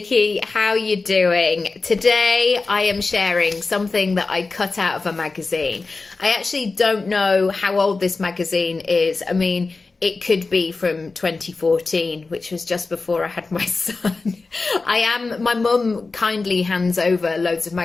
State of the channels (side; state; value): right; quieter; 3.9 dB